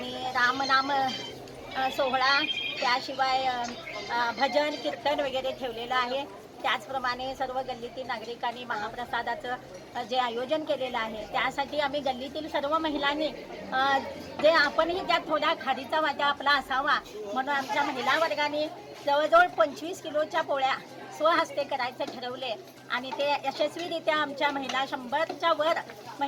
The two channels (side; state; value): both; identical; correlation 1.00